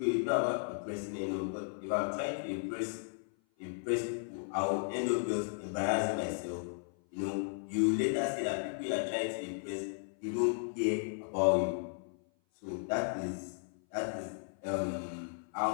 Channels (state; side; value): silent; right; 54 dB below the other